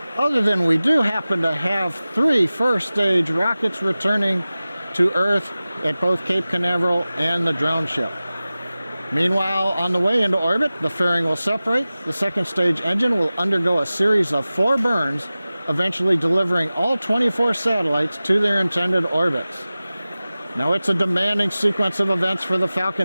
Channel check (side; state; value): both; inverted; correlation -0.97